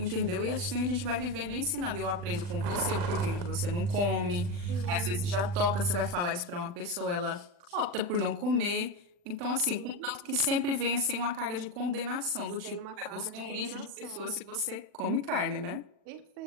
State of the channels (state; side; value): late; left; 40 ms